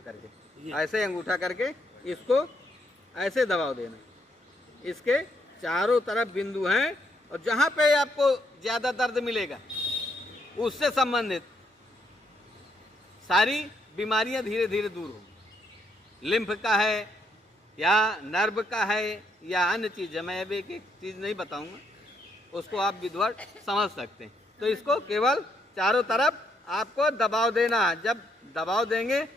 ये। ऐसे अंगूठा करके इसको ऐसे दबाव देना। इसके चारों तरफ बिंदु हैं और जहां पे आपको ज्यादा दर्द मिलेगा उससे संबंधित सारी बीमारियां धीरे धीरे दूर होंगी। लिम्फ का है या नर्व का है या अन्य चीज है, मैं अब एक एक चीज नहीं बताऊंगा, उसको आप विधवत समझ सकते हैं। तो इसको केवल चारों तरफ आपको दबाव देना है। जब दबाव देंगे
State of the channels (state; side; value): normal; both; correlation 0.74